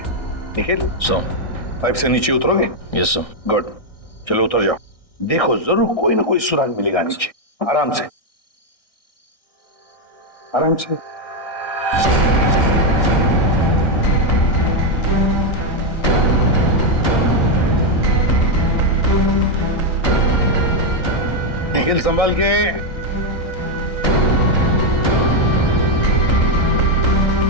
निखिल, पाइप से नीचे उतरोगे? Yes sir. गुड, चलो उतर जाओ। देखो जरूर कोई ना कोई सुराग मिलेगा नीचे। आराम से, आराम से। निखिल संभाल के।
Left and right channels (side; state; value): right; late; 1.6 ms